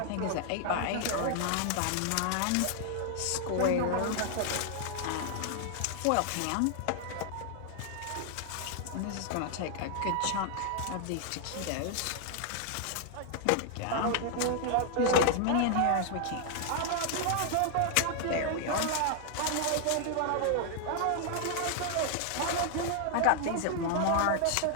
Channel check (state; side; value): different; both; correlation 0.00